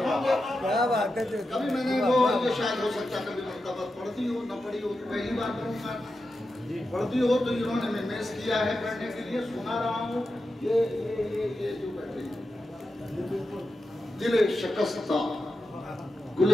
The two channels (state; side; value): normal; both; correlation 0.90